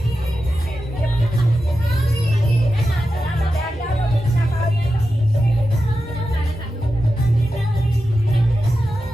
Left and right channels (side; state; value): both; normal; correlation 0.91